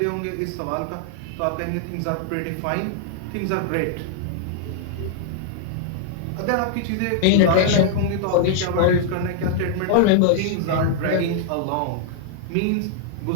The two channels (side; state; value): both; different; correlation -0.01